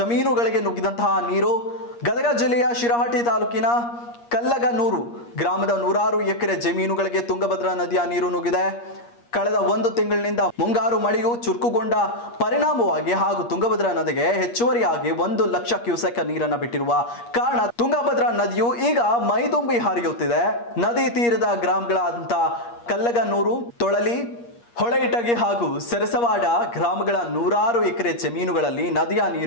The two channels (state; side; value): late; right; 8.5 ms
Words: ನುಗ್ಗಿದಂತಹ ನೀರು ಗದಗ ಜಿಲ್ಲೆಯ ಶಿರಹಟ್ಟಿ ತಾಲೂಕಿನ ಕಲ್ಲಗನೂರು ಗ್ರಾಮದ 100 ಎಕರೆ ಜಮೀನುಗಳಿಗೆ ತುಂಗಭದ್ರಾ ನದಿಯ ನೀರು ನುಗ್ಗಿದೆ. ಕಳೆದ 1 ತಿಂಗಳಿನಿಂದ ಮುಂಗಾರು ಮಳೆಯು ಚುರುಕುಗೊಂಡ ಪರಿಣಾಮವಾಗಿ ಹಾಗೂ ತುಂಗಭದ್ರಾ ನದಿಗೆ ಹೆಚ್ಚುವರಿಯಾಗಿ 1 ಲಕ್ಷ ಕ್ಯೂಸೆಕ್ ನೀರನ್ನು ಬಿಟ್ಟಿರುವ ಕಾರಣ ತುಂಗಭದ್ರಾ ನದಿಯು ಈಗ ಮೈದುಂಬಿ ಹರಿಯುತ್ತಿದೆ. ನದಿ ತೀರದ ಗ್ರಾಮಗಳಾದಂಥ ಕಲ್ಲಗನೂರು, ತೊಳಲಿ, ಹೊಳೆಯಿಟಗಿ ಹಾಗೂ ಸರಸವಾಡ ಗ್ರಾಮಗಳ 100 ಎಕರೆ ಜಮೀನುಗಳಲ್ಲಿ ನದಿಯ